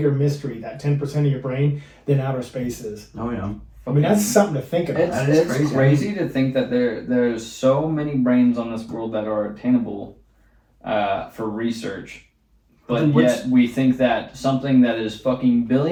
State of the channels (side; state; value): both; identical; correlation 1.00